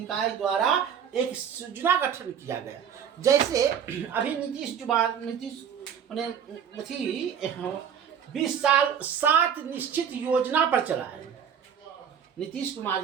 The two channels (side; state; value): left; quieter; 8.1 dB